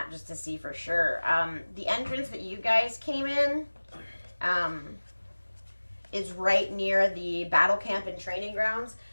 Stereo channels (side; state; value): both; inverted; correlation -1.00